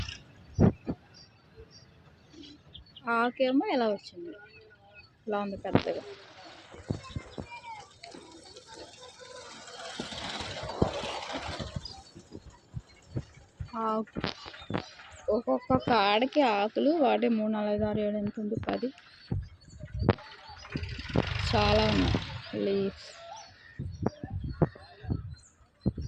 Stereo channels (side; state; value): both; identical; correlation 1.00